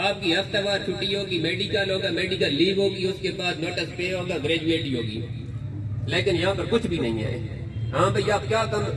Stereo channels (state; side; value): identical; both; correlation 1.00